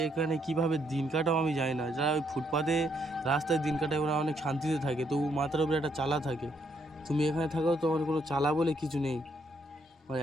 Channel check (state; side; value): normal; both; correlation 0.73